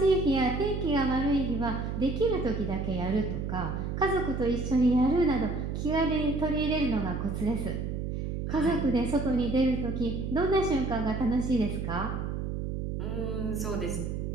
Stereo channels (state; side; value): noise; right; hum, 3 dB below the sound